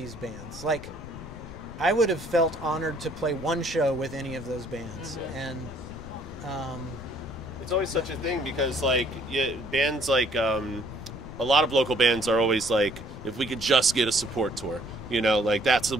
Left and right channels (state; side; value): noise; left; rumble, 14 dB below the sound